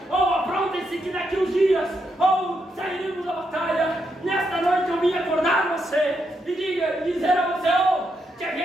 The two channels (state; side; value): normal; both; correlation 0.81